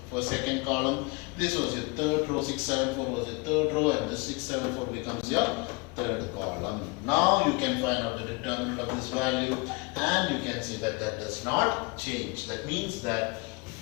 second column. This was your third row, 6, 7, 4 was your third row, and this 6, 7, 4 becomes your third column. Now you can find out the determinant of this value, and you can see that that does not change. That means that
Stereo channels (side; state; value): right; quieter; 28.0 dB